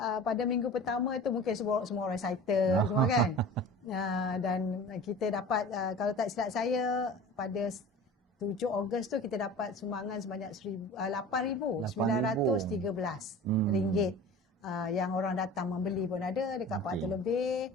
pada minggu pertama itu mungkin semua orang excited semua kan. Dan kita dapat, kalau tak silap saya, pada 7 Ogos tu kita dapat sumbangan sebanyak RM8,913 yang orang datang membeli pun ada, dekat 400 lebih.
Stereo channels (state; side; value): normal; both; correlation 0.39